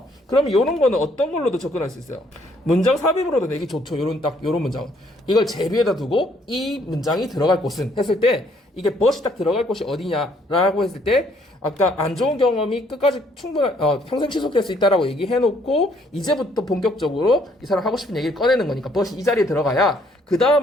그러면 이런 거는 어떤 걸로도 접근할 수 있어요? 문장 삽입으로도 내기 좋죠. 요런 문장. 이걸 제비에다 두고 이 문장이 들어갈 곳은 했을 때 이게 but이 딱 들어갈 곳이 어디냐라고 했을 때 아까 안 좋은 경험이 끝까지 평생 지속될 수 있다라고 얘기해놓고 이제부터 본격적으로 이 사람 하고 싶은 얘기를 꺼내는 거니까 but이 이 자리에 들어가야 그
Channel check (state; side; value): normal; both; correlation 0.66